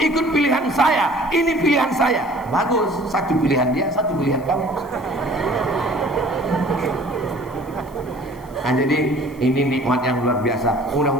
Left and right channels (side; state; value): left; noise; hiss, 27 dB below the sound